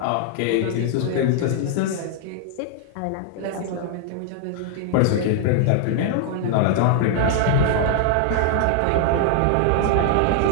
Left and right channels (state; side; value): different; both; correlation 0.00